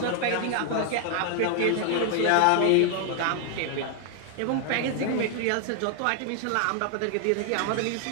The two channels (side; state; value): both; different; correlation 0.00